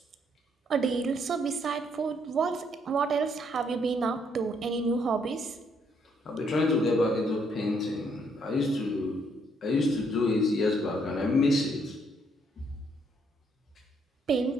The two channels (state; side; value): normal; both; correlation 0.71